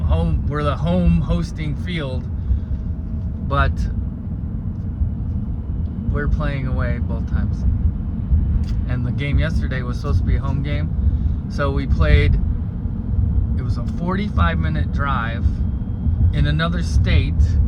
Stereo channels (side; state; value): both; identical; correlation 1.00